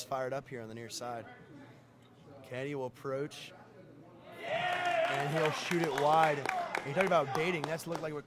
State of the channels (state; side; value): identical; both; correlation 1.00